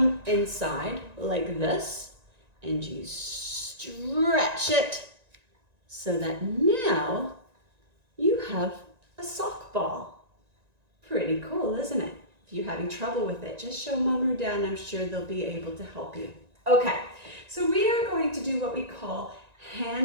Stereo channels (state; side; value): late; left; 1.9 ms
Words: inside like this, and you stretch it so that now you have a sock ball. Pretty cool, isn't it? If you're having trouble with it, just show Mom or Dad, and I'm sure they'll be able to help you. Okay, so we are going to do what we call